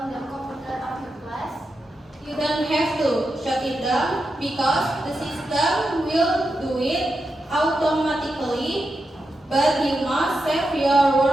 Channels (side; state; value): both; normal; correlation 0.87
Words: the computer after class? You don't have to shut it down because the system will do it automatically, but you must save your